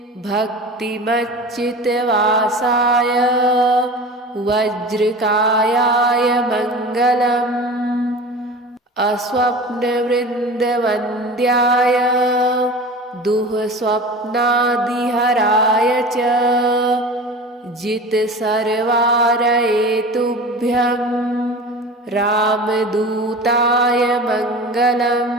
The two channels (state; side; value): normal; both; correlation 0.35